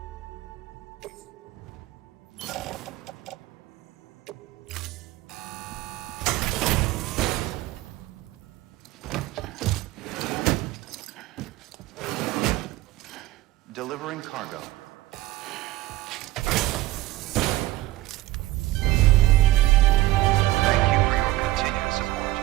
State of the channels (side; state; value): left; quieter; 17.3 dB